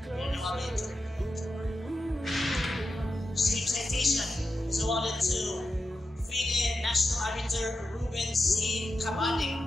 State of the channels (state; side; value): normal; both; correlation 0.89